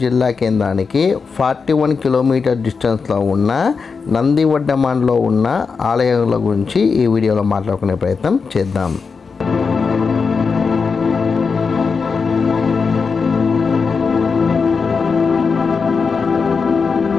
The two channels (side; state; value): right; quieter; 5.2 dB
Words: జిల్లా కేంద్రానికి 41 కిలోమీటర్ డిస్టెన్స్లో ఉన్న నందివడ్డమాన్లో ఉన్న ఆలయాల గురించి ఈ వీడియోలో మాట్లాడుకునే ప్రయత్నం చేద్దాం.